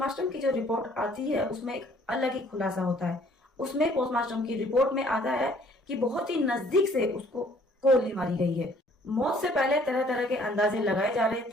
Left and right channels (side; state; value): both; normal; correlation 0.59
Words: की जो रिपोर्ट आती है उसमें एक अलग ही खुलासा होता है। उसमें पोस्टमार्टम की रिपोर्ट में आता है कि बहुत ही नजदीक से उसको गोली मारी गई है। मौत से पहले तरह तरह के अंदाजे लगाए जा रहे